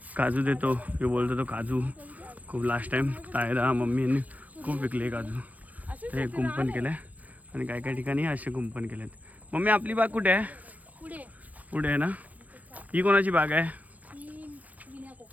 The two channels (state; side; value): late; left; 0.077 ms